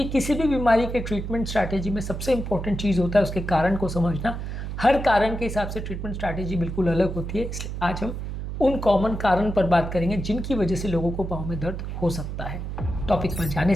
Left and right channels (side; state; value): right; noise; hum, 6 dB below the sound